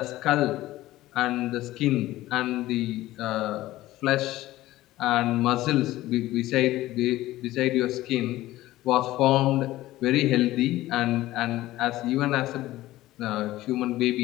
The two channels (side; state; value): right; quieter; 16.2 dB